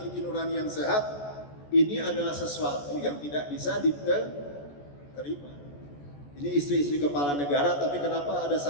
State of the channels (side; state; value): right; late; 14 ms